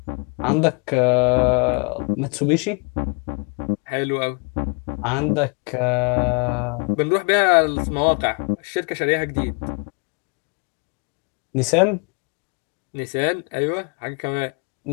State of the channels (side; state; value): right; quieter; 35.6 dB